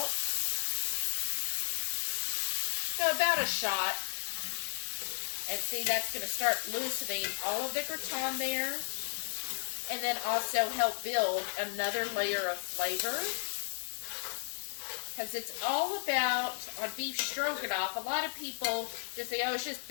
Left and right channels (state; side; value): silent; right; digital silence